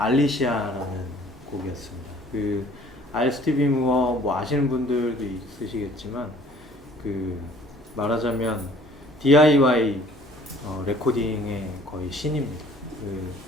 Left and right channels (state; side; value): normal; both; correlation 0.54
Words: 곡이었습니다. 알 스티비 무어 뭐 아시는 분들도 있으시겠지만 말하자면 DIY 레코딩의 거의 신입니다.